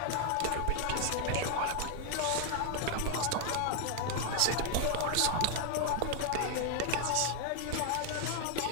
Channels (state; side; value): different; both; correlation 0.00